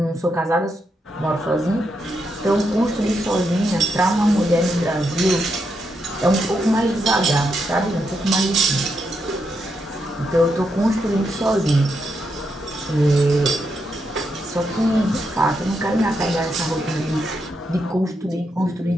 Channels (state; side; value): normal; both; correlation 0.82